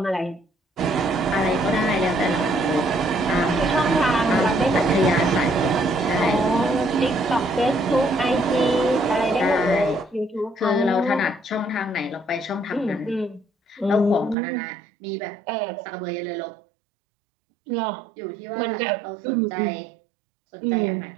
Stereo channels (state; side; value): drops out; left; at 14.4 s